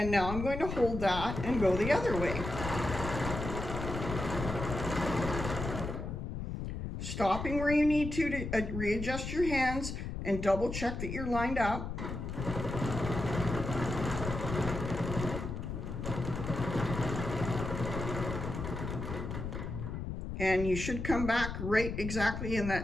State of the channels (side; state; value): left; noise; rumble, 5 dB below the sound